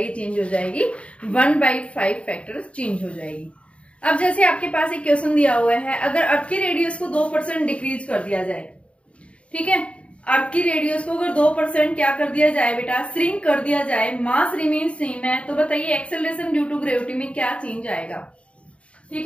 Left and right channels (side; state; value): right; late; 0.062 ms